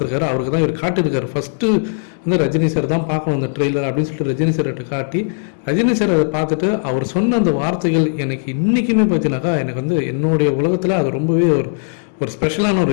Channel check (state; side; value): silent; right; 68 dB below the other